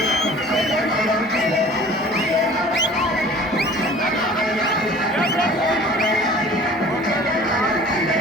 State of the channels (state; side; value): normal; both; correlation 0.46